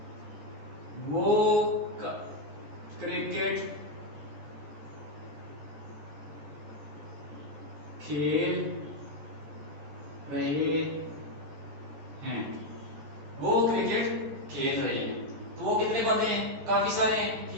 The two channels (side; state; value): left; late; 13 ms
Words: वो क्रिकेट खेल रहे हैं। वो क्रिकेट खेल रहे हैं, तो वो कितने बंदे हैं? काफी सारे हैं,